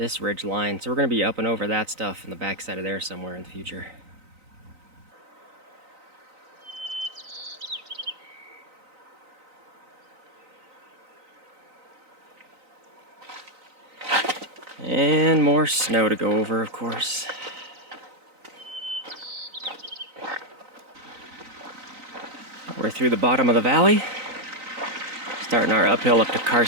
ridge line. So we're going to be up and over that stuff in the backside of there somewhere in the future. And more snow to go over, of course. We're through the bottom of the valley, starting our uphill up to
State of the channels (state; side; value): late; left; 3.9 ms